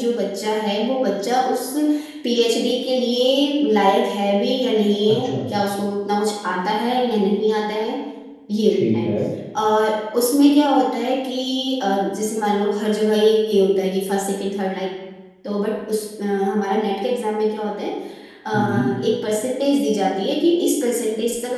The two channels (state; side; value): identical; both; correlation 1.00